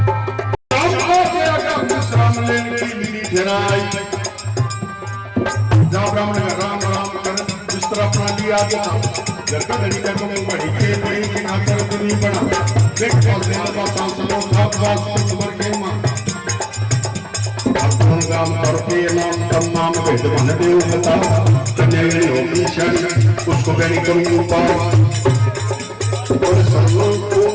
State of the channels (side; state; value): both; identical; correlation 1.00